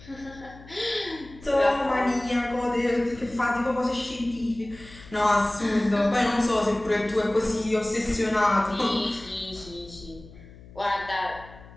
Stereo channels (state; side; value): noise; left; hum, 20 dB below the sound